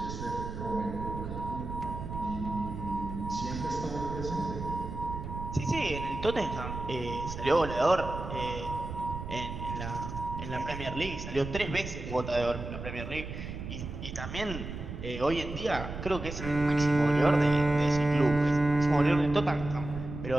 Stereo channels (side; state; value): right; noise; rumble, 8 dB below the sound